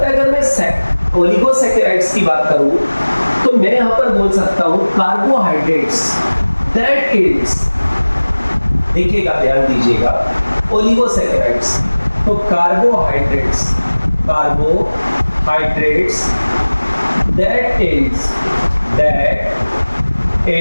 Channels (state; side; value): inverted; both; correlation -1.00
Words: है, अगर मैं ओलिगोसैकेराइड्स की बात करूं तो मैं यहां पर बोल सकता हूं कार्बोहाइड्रेट्स दैट इज, देखिएगा, ध्यान दीजिएगा, ओलिगोसैकेराइड्स, तो carbohydrates that is